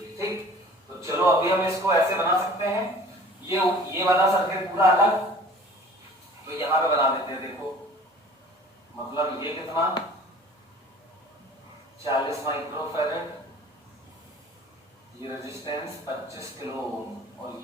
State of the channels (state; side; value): normal; both; correlation 0.46